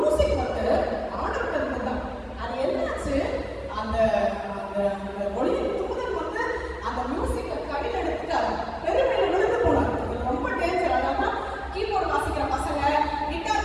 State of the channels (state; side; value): identical; both; correlation 1.00